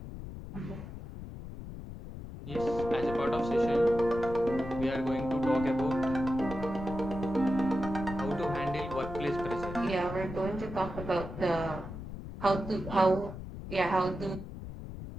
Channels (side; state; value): left; noise; rumble, 10 dB below the sound